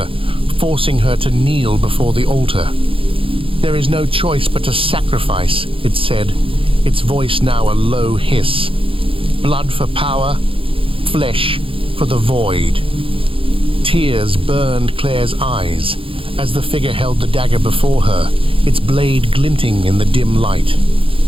forcing her to kneel before the altar. "There is no choice but to sacrifice," it said, its voice now a low hiss. "Blood for power, flesh for the void." Tears burned Claire's eyes as the figure held the dagger before her, its blade glinting in the dim light.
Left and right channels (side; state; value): left; late; 0.26 ms